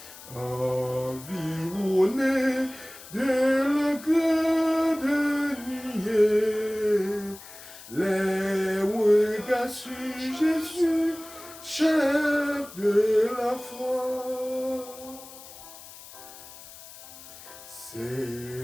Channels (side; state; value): left; noise; hiss, 17 dB below the sound